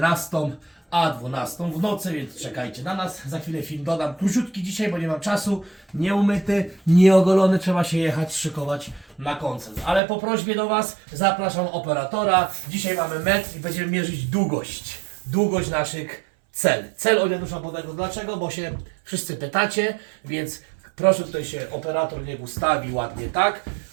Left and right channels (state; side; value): drops out; left; at 10.0 s